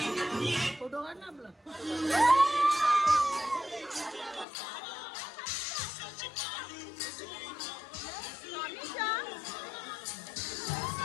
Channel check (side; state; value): right; drops out; at 4.5 s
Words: फोटो काढ ना आपला